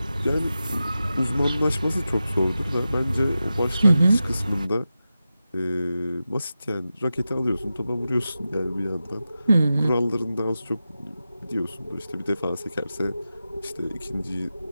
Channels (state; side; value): inverted; both; correlation -0.92